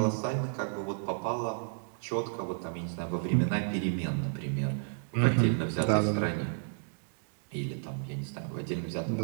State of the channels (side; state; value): left; silent; 56 dB below the other